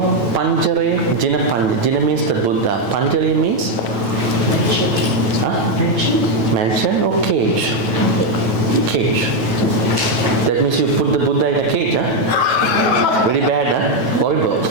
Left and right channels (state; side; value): late; left; 9.1 ms